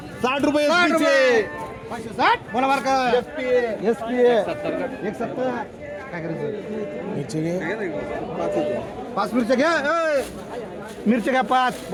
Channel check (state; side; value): identical; both; correlation 1.00